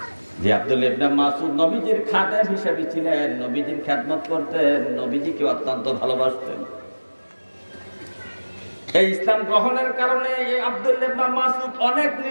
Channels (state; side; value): inverted; both; correlation -1.00